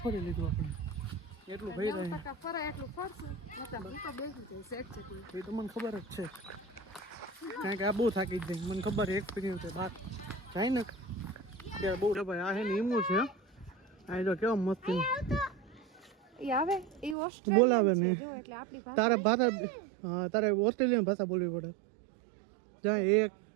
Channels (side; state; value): left; drops out; at 17.2 s